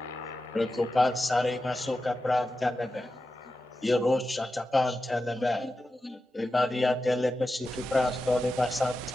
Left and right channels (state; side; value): normal; both; correlation 0.91